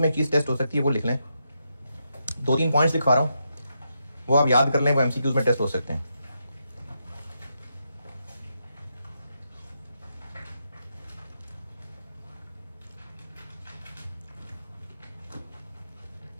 में चीज़ टेस्ट हो सकती है, वो लिख लें। 2-3 पॉइंट्स लिखवा रहा हूँ, वो आप याद कर लें, वो MCQs में टेस्ट हो सकते हैं।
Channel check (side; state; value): both; inverted; correlation -0.83